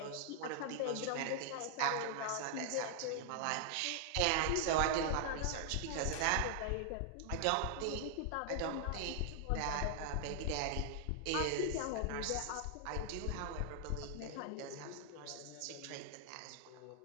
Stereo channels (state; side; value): different; both; correlation 0.00